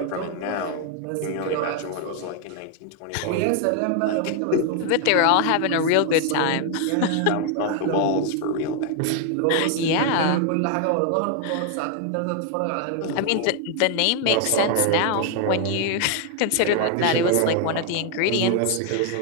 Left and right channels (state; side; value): different; both; correlation 0.00